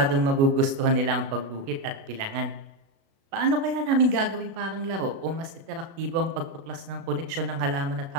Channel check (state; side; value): late; left; 36 ms